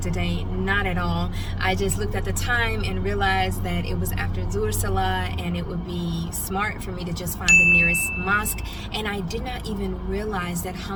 not at all. I just looked at the time and realized that it was after Zuhr Salah and it would be smart for me to just find the nearest mosque. And I did not even realize that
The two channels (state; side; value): identical; both; correlation 1.00